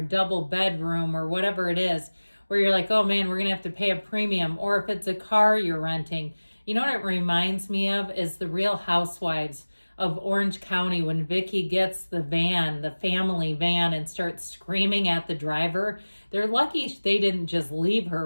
double bedroom or whatever it is, where you're like, oh man, we're going to have to pay a premium. Or if it's a car you're renting. You know what it reminds me of is the Real Housewives of Orange County when Vicky gets the van, the family van, and starts screaming at the driver. They're lucky they didn't just leave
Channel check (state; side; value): inverted; both; correlation -1.00